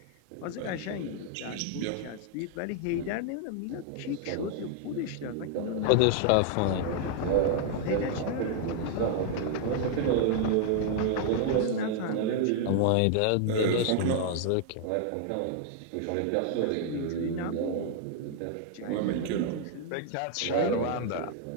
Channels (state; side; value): different; both; correlation 0.00